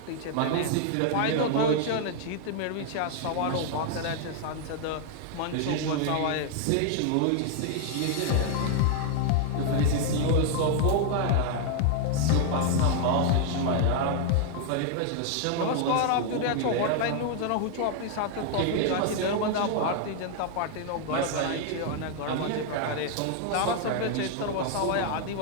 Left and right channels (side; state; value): both; different; correlation 0.00